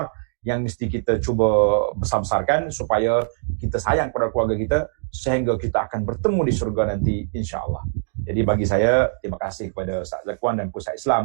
yang mesti kita cuba besar-besarkan supaya kita sayang pada keluarga kita sehingga kita akan bertemu di syurga nanti, insya-Allah. Jadi bagi saya, terima kasih kepada Ustaz Zakwan dan Pusat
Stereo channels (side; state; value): left; silent; digital silence